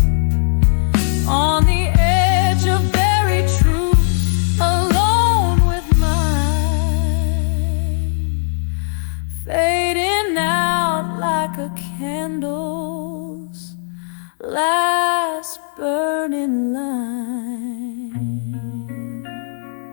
on the edge of buried truth, alone with mine, fading out like a candle's last burning line.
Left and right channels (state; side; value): silent; right; digital silence